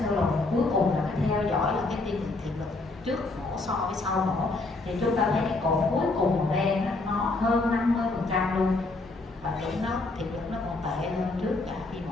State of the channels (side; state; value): right; quieter; 3.2 dB